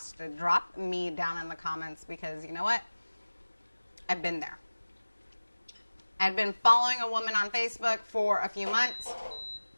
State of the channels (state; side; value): inverted; both; correlation -1.00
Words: drop me down in the comments, because you know what? I've been there. I'd been following a woman on Facebook for a few months,